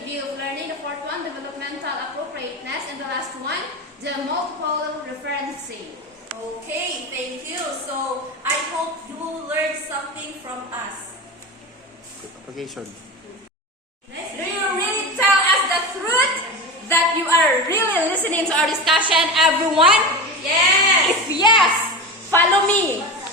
view of learning. The fourth one, developmental appropriateness. And the last one, the multiple referencing. Okay, thank you. So, I hope you will learn something from us. Application. Do you really tell us the truth that you are really listening to our discussion, everyone? Yes! If yes, follow me.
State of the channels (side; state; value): both; normal; correlation 0.25